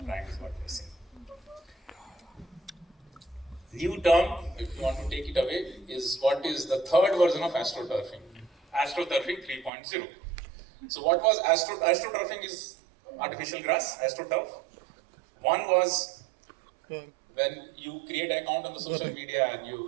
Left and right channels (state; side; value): drops out; left; at 9.7 s